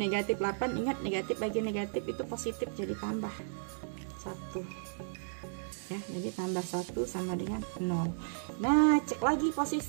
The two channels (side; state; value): left; silent; digital silence